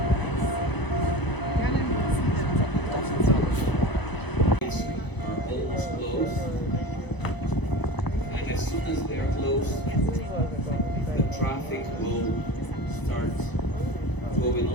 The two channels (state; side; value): late; right; 1.0 ms